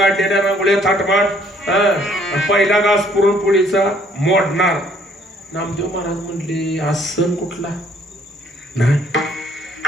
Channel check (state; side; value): normal; both; correlation 0.63